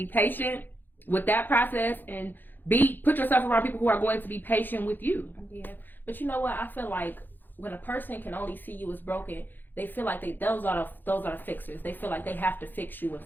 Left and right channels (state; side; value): late; right; 0.090 ms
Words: patient with that process and put yourself around people who are going to be patient with you. Yeah. But you know what? I feel like when a person can only see you as broken, they feel like those are the fixers. They feel like they have to fix you and